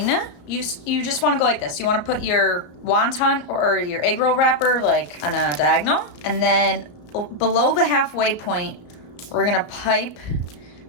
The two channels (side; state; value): right; late; 34 ms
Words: you just want to go like this. You want to put your wonton or your eggroll wrapper like on a diagonal, and then below the halfway point, we're gonna pipe